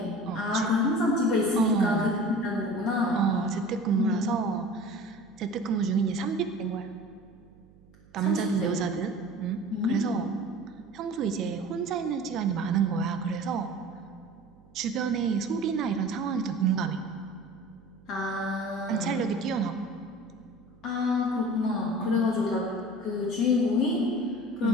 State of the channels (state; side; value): noise; right; hum, 27 dB below the sound